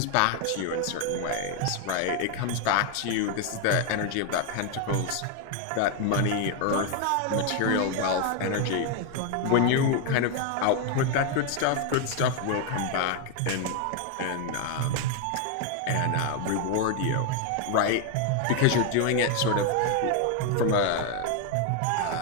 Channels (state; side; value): different; both; correlation 0.01